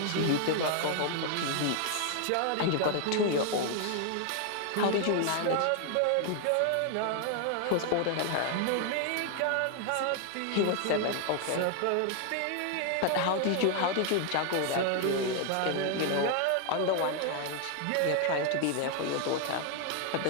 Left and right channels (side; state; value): both; different; correlation 0.00